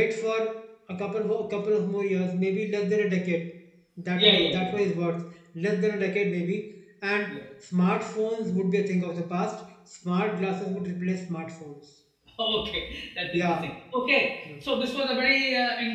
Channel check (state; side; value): identical; both; correlation 1.00